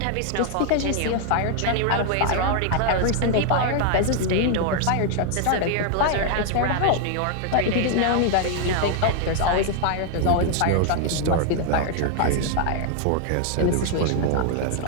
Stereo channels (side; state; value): both; different; correlation 0.00